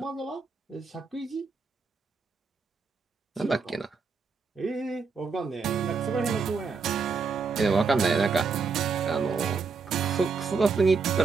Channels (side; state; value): left; quieter; 4.8 dB